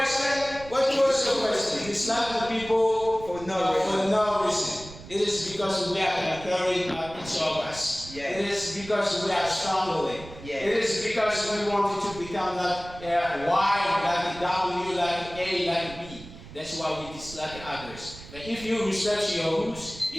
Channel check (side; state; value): right; noise; rumble, 16 dB below the sound